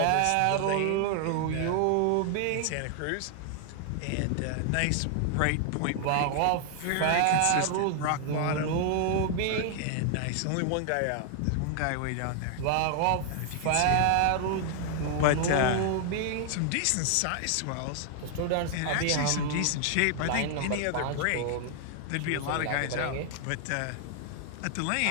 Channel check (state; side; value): different; both; correlation 0.00